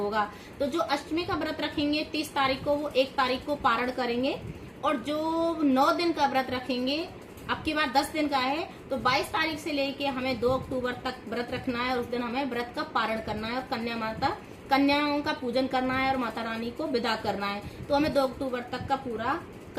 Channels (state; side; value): identical; both; correlation 1.00